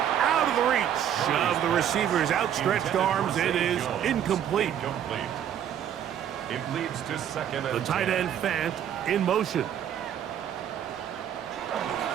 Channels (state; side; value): quieter; left; 9.8 dB